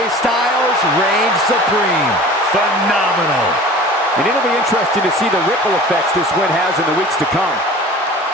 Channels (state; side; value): normal; both; correlation 0.42